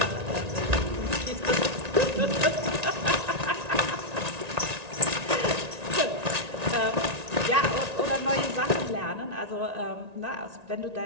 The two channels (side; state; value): left; late; 1.9 ms